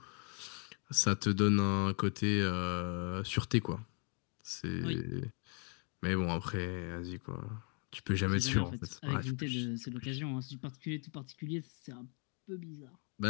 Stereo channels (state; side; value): quieter; right; 36.8 dB